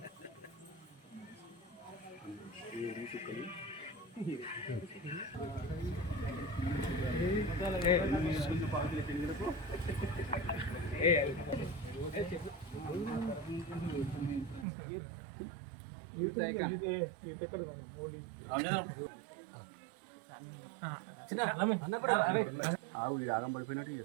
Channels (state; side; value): drops out; left; at 14.7 s